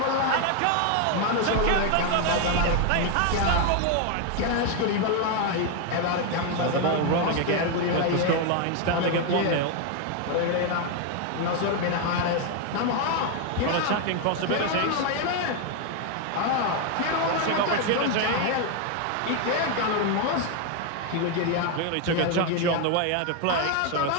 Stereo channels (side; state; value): both; different; correlation 0.01